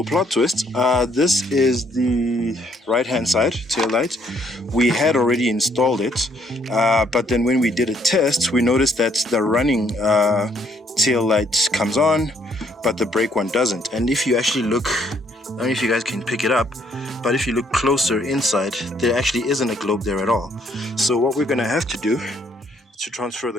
plot twist. This is the right-hand side tail light. We had already installed it, but then when we did a test, we noticed that the running tail light comes on, but the brake one doesn't. And if you actually look, I don't know if you guys can pick it up, but if you look closer inside, there actually isn't a globe there at all. So what we're gonna have to do is to transfer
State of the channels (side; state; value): both; normal; correlation 0.68